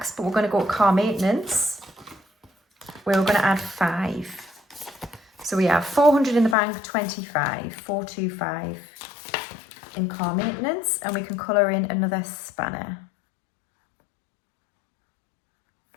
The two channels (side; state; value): right; drops out; at 6.6 s